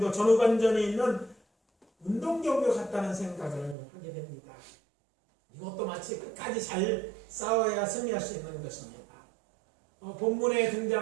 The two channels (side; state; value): left; drops out; at 3.8 s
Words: 전후반전에 있는 운동경기 같다는 생각을 하게 됩니다. 이것도 마치 끝까지 잘 싸워야 승리할 수 있는 것입니다. 본문에